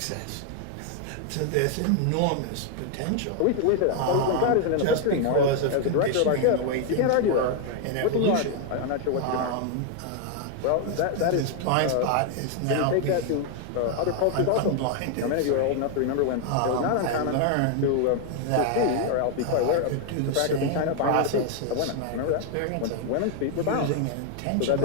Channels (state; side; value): different; both; correlation 0.00